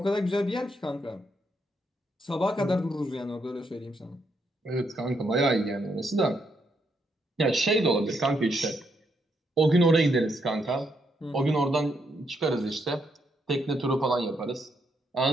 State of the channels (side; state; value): both; normal; correlation 0.77